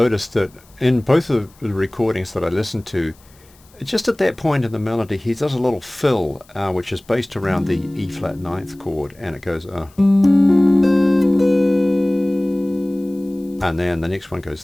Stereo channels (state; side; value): noise; left; hiss, 29 dB below the sound